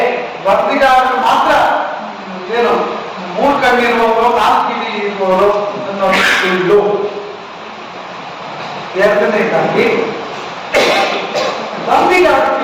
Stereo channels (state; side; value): identical; both; correlation 1.00